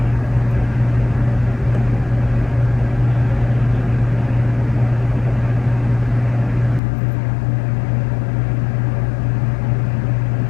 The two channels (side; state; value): right; drops out; at 6.8 s